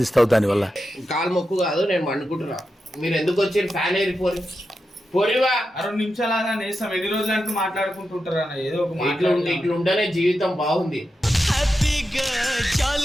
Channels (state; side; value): normal; both; correlation 0.89